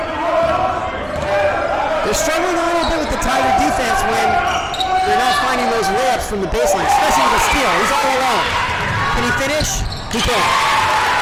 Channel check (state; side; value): identical; both; correlation 1.00